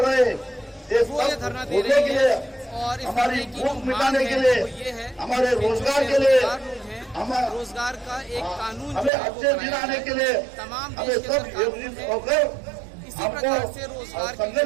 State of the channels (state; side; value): drops out; left; at 9.1 s